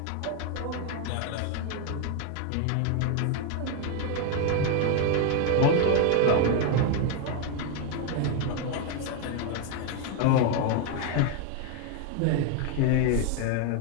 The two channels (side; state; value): both; different; correlation 0.01